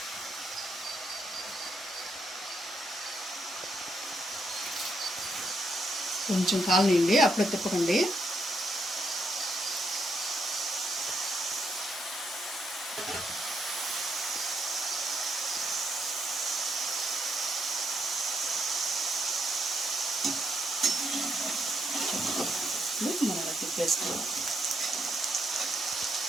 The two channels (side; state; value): both; normal; correlation 0.77